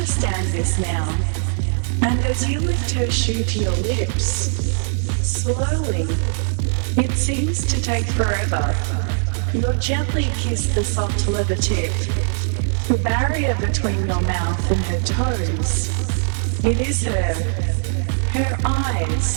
this now. And as you lift her shoe to your lips, slowly, it seems to take forever, you'll gently kiss the soft leather tip, the barrier between your mouth and her toes. It is her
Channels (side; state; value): left; silent; digital silence